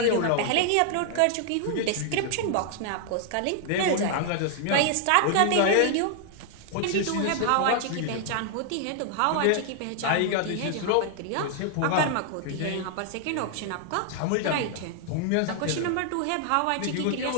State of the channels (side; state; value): both; different; correlation 0.00